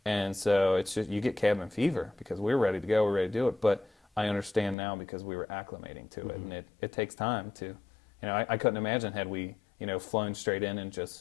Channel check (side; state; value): right; drops out; at 4.8 s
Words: and so it's just you get cabin fever because we're ready to go, we're ready to do it, but I understand now because we were acclimating to it, Mm-hmm. and it takes time to, I couldn't imagine had we, flown straight in and